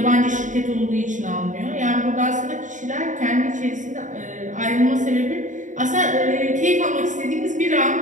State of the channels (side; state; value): left; late; 0.36 ms